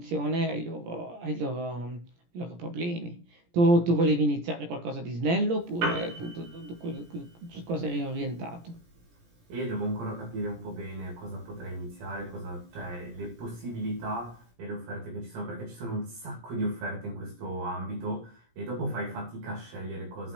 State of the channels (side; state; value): left; late; 17 ms